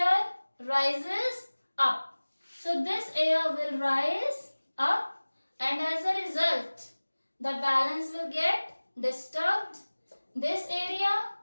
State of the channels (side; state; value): both; inverted; correlation -1.00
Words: rises up. So this air will rise up, and as a result, the balance will get disturbed. This area